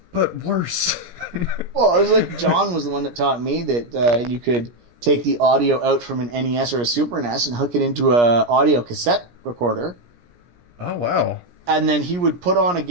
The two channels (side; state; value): left; late; 17 ms